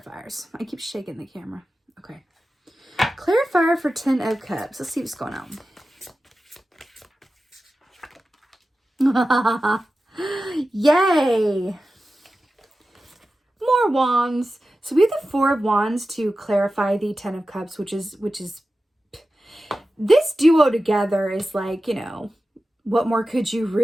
I keep shaking the camera. Okay. Clarifier for 10 of Cups. Let's see what's going on. Yay! More wands. So we have the 4 of Wands to clarify the 10 of Cups, which is this duo together is what more could you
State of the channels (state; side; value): normal; both; correlation 0.94